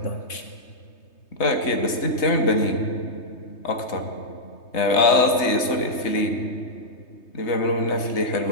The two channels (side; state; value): right; late; 3.3 ms